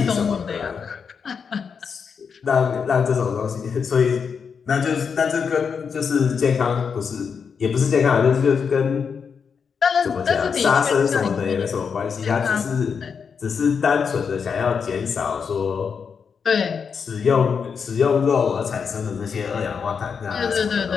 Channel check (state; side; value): quieter; right; 6.2 dB